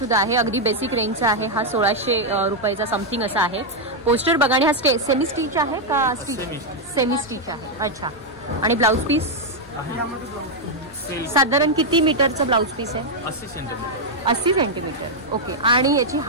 आहे, अगदी बेसिक रेंजचा आहे हा। 1600 रुपयाचा समथिंग असा आहे पोस्टर बघा। आणि हा सेमी स्टिच आहे का? सेमी स्टिच आहे। अच्छा, आणि ब्लाउज पीस साधारण किती मीटरचं ब्लाउज पीस आहे? 80 सेंटीमीटर। 80 सेंटीमीटर। ओके, आणि याची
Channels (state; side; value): normal; both; correlation -0.01